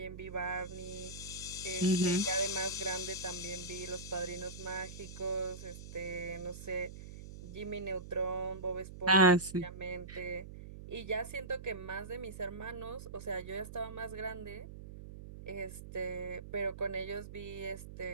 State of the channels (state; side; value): noise; right; hum, 12 dB below the sound